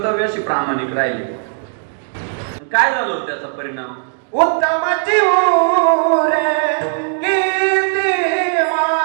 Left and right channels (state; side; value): silent; left; digital silence